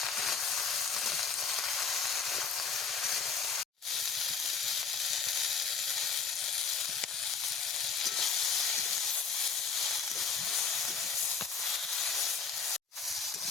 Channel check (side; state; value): right; quieter; 5.6 dB